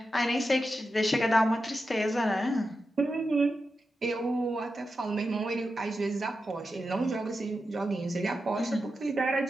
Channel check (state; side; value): normal; both; correlation 0.90